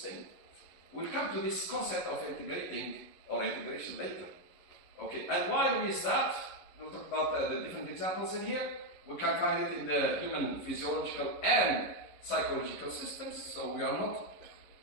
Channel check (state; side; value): late; right; 11 ms